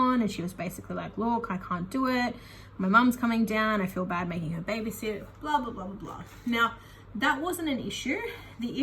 And she was basically like, look, I can't do it. My mum's coming down. I feel bad making her babysit, blah, blah, blah, blah, blah. Now, that wasn't an issue. The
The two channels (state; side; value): identical; both; correlation 1.00